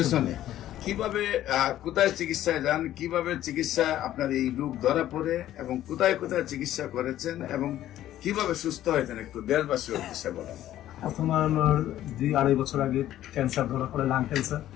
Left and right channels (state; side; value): quieter; right; 12.9 dB